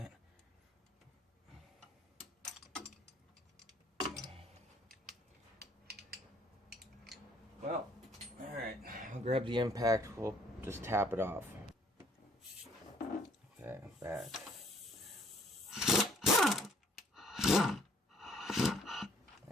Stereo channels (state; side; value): normal; both; correlation 0.62